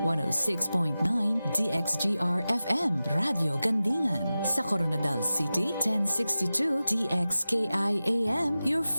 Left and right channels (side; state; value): both; inverted; correlation -0.95